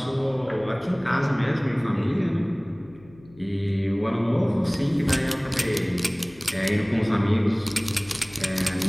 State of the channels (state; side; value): noise; left; hum, 24 dB below the sound